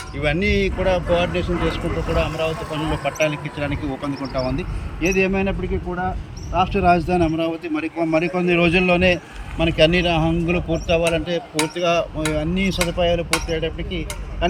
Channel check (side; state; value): both; identical; correlation 1.00